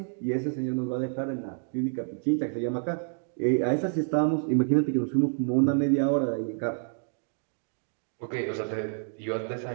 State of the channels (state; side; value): silent; left; 59 dB below the other